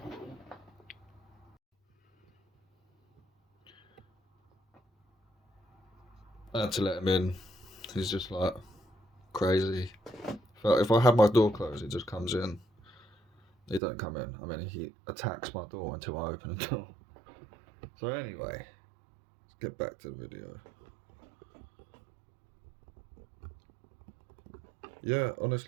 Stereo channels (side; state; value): left; drops out; at 13.8 s